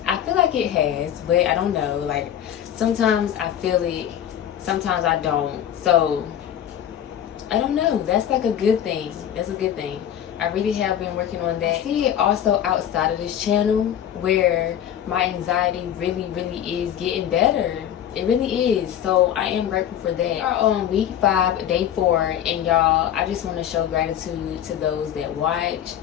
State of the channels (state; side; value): quieter; right; 10.2 dB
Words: I feel like it has, but I don't know. Like, sometimes I feel it, sometimes I don't. So I don't know. That's like a good thing. That's a good thing. I really have been working on that. I see it also outside of this channel where my anxiety really is getting better. It really is. So I am grateful for that. We are on week 5, day 4, and y'all, I just want to show gratitude to those that watch,